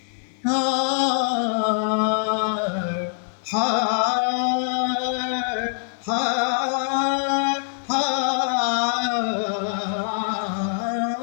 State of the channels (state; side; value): silent; right; digital silence